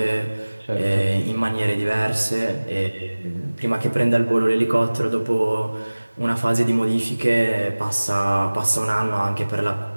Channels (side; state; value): both; inverted; correlation -1.00